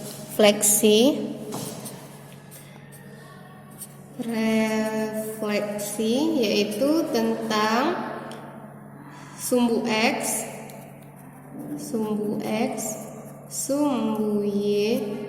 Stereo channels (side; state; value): both; identical; correlation 1.00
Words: yaitu tentang sumbu X, sumbu Y,